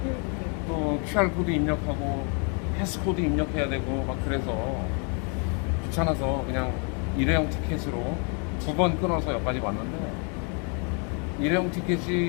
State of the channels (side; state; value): right; quieter; 38.2 dB